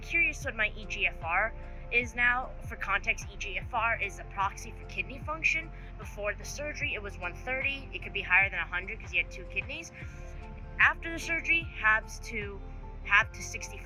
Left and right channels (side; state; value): both; identical; correlation 1.00